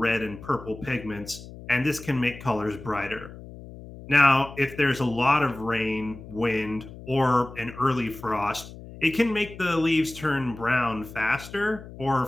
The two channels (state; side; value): noise; left; hum, 15 dB below the sound